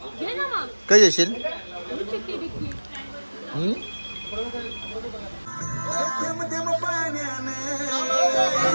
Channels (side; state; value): both; inverted; correlation -1.00